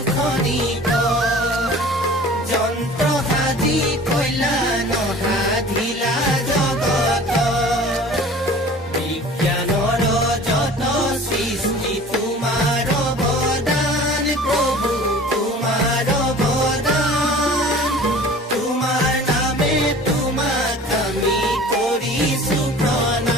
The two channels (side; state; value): both; normal; correlation 0.44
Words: খনিক যন্ত্ৰ সাজি কইলা নসাধিলা জগত। বিজ্ঞানৰ যত সৃষ্টি তোমাৰ অৱদান, প্ৰভু তোমাৰ অৱদান। তোমাৰ নামে তোমাক আমি কৰিছো